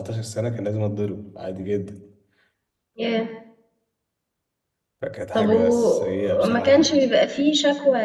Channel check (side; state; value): both; identical; correlation 1.00